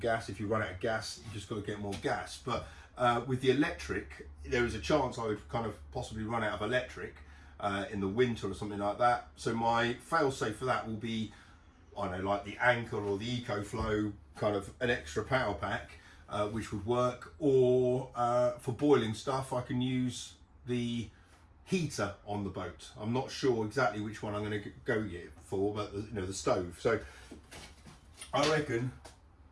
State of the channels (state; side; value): identical; both; correlation 1.00